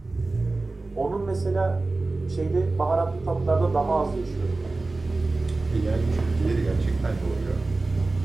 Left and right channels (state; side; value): quieter; left; 3.3 dB